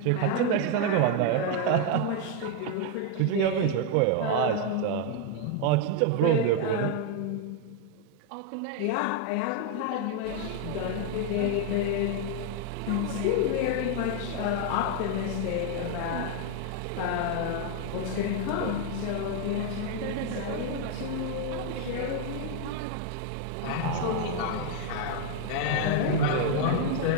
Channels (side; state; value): both; different; correlation 0.00